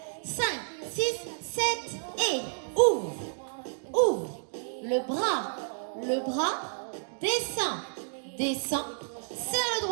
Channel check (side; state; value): left; silent; digital silence